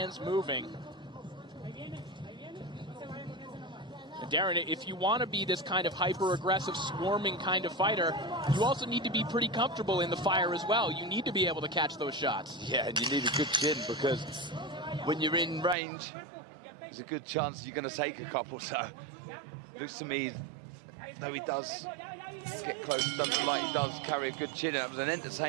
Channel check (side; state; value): left; drops out; at 15.8 s